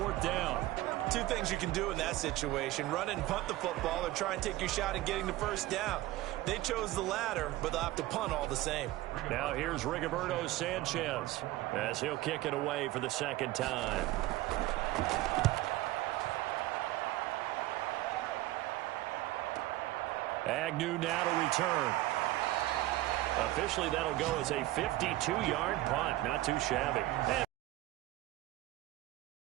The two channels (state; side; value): quieter; left; 16.9 dB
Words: down. 2 things you can do in that situation. Run and punt the football or try and take your shot at getting the first down. They chose the latter, but they'll have to punt all the same. Now here's Rigoberto Sanchez as he'll kick it away for the 2nd time. Agnew now to return. Officially, that'll go as a 52-yard punt. Not too shabby.